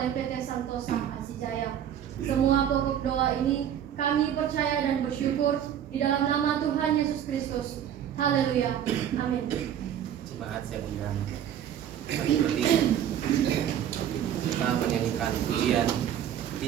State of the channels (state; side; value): quieter; left; 9.9 dB